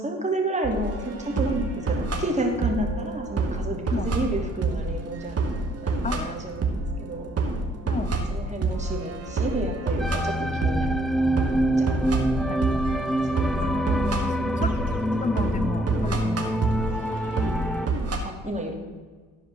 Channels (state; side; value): normal; both; correlation 0.67